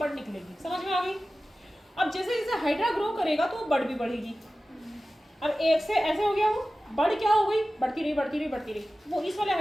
निकलेगी। समझ में आ गई। अब जैसे जैसे हाइड्रा ग्रो करेगा तो बड़ भी बढ़ेगी। अब एक से ऐसे हो गया, वो बड़ क्या हो गई, बढ़ती रही बढ़ती रही बढ़ती रही, वो इस वाले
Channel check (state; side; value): normal; both; correlation 0.95